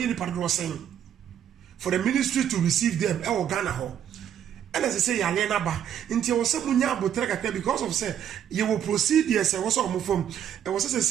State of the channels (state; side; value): quieter; left; 9.6 dB